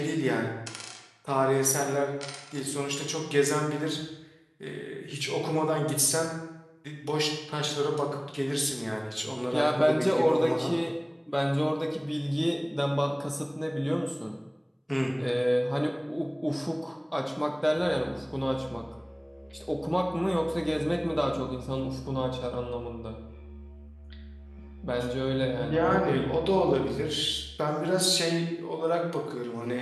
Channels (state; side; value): identical; both; correlation 1.00